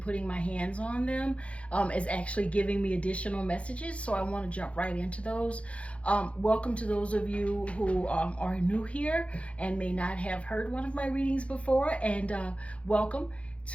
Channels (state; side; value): late; right; 0.062 ms